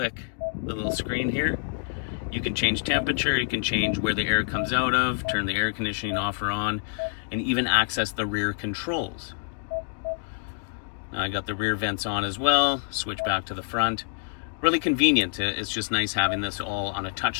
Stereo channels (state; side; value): silent; right; digital silence